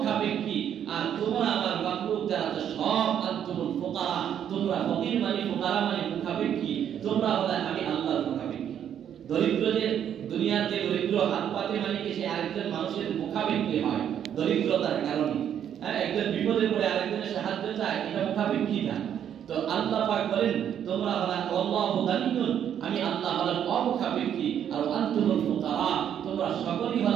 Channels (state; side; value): quieter; left; 9.4 dB